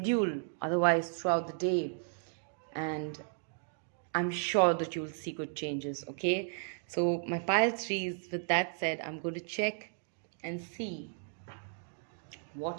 otherwise throughout the day. And I'm sure that you'll see good changes, okay? So my pile threes, with that said, I'm going to check and see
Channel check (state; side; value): silent; left; 55 dB below the other